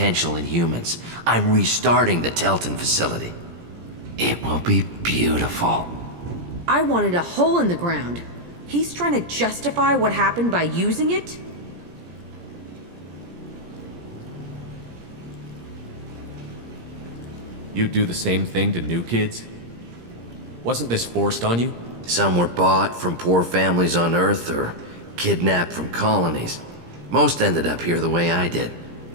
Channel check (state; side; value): late; left; 17 ms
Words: in humans. I'm restarting the Telton facility. It will be beautiful. I wanted a hole in the ground. He's trying to justify what happened by using it? You do the same thing to new kids? Wasn't this forced on you? Some were bought from poor families on Earth or kidnapped from colonies. Most ended up here the way I did.